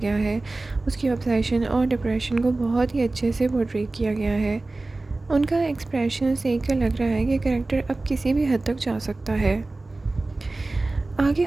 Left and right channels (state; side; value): quieter; left; 3.1 dB